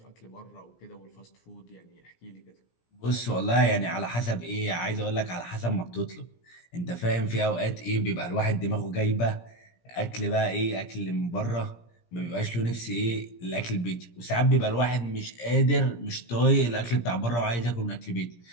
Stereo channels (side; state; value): right; late; 17 ms